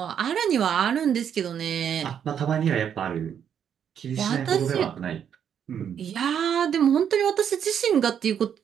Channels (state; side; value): quieter; left; 8.5 dB